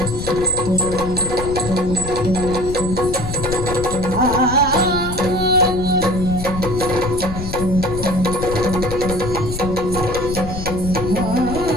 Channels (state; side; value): noise; left; rumble, 7 dB below the sound